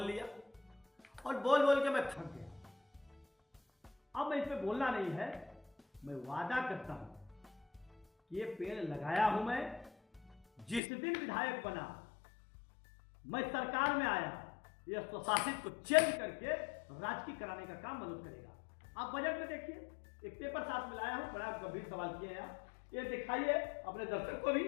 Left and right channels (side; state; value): right; drops out; at 10.8 s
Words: लिया और बोल बोल के मैं थक गया। अब मैं इस पे बोलना नहीं है। मैं वादा करता हूं कि ये पेड़ लगाया हूं मैं। जिस दिन विधायक बना, मैं सरकार में आया, ये स्वशासित को चेंज करके राजकीय कराने का काम मनोज करेगा। आप बजट में देखिए, एक पेपर साथ में लाया हूं, बड़ा गंभीर सवाल किए हैं आप, ये दिखाइए अपने दर्शक को भी।